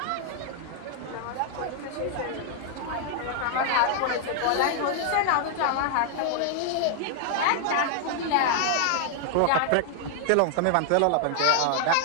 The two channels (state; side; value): different; both; correlation -0.01